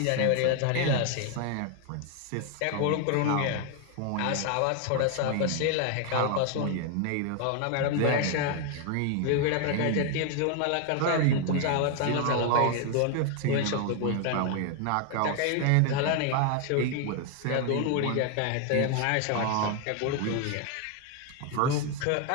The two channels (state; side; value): different; both; correlation 0.00